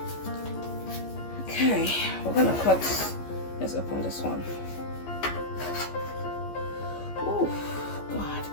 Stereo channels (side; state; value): right; late; 14 ms